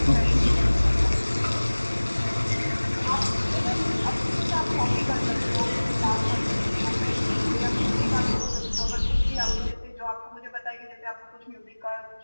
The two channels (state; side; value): inverted; both; correlation -1.00